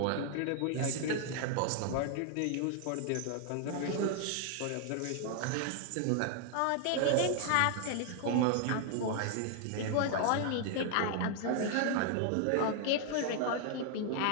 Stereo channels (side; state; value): both; different; correlation 0.00